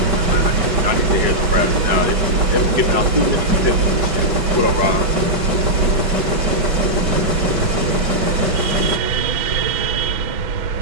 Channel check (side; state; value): left; late; 5.2 ms